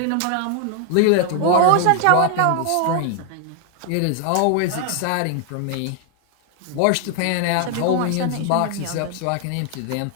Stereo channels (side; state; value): both; different; correlation 0.00